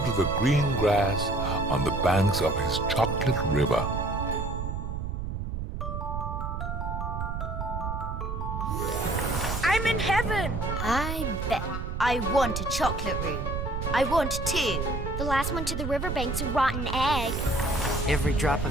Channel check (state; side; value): noise; right; rumble, 4 dB below the sound